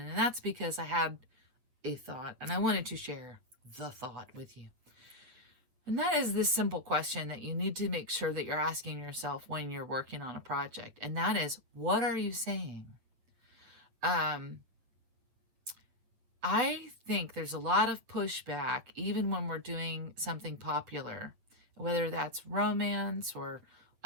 that's because I had a thought, and I wanted to share the thought with you. And that is this simple question that you need to make sure that you're asking yourself when you're working on a project. And that is, what are you saying? I think there's a lot of pushback, even when we're doing something popular, whether that's romance or,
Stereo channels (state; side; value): late; left; 8.3 ms